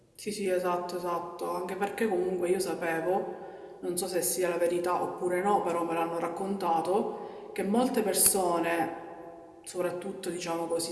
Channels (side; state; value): both; identical; correlation 1.00